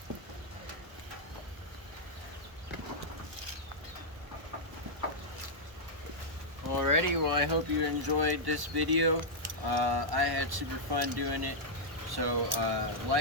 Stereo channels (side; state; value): left; late; 1.1 ms